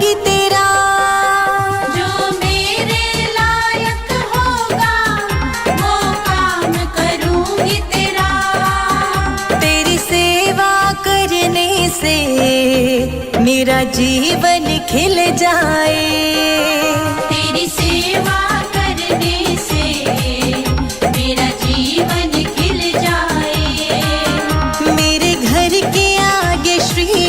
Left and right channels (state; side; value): noise; left; rumble, 21 dB below the sound